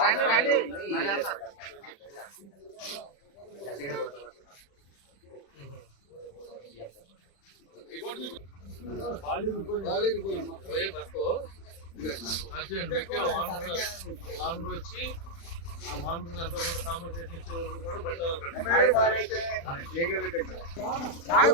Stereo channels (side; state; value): right; late; 35 ms